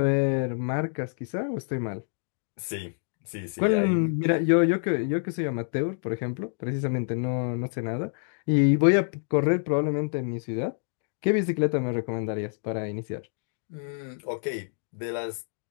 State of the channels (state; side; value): silent; right; digital silence